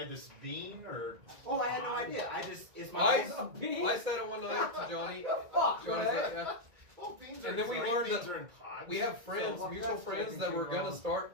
this bean or? Oh, I had no idea. I just it's my. I said it one night to Johnny. Fuck, Johnny's man. like, yeah. Well, beans And are then we green learned beans that are in pods. We have friends, So- mutual that's friends fucking that were too gonna long.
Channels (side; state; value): left; late; 1.9 ms